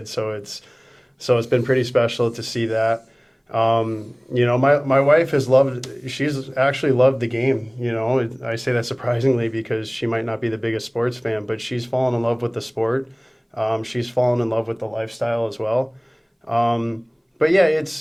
So it's been pretty special to see that. My wife she's actually loved the game. I say that surprisingly because she might not be the biggest sports fan, but she's fallen in love with the sport. She's fallen in love with the lifestyle as well. But yeah,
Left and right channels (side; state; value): both; identical; correlation 1.00